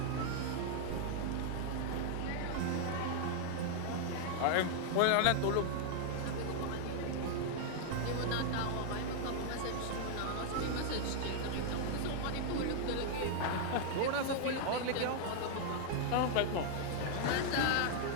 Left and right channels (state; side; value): different; both; correlation 0.00